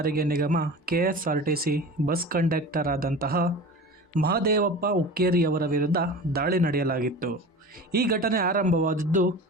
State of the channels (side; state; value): both; normal; correlation 0.35